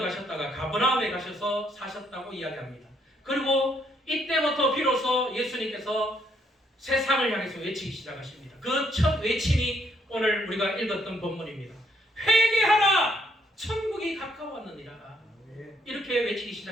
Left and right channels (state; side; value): normal; both; correlation 0.71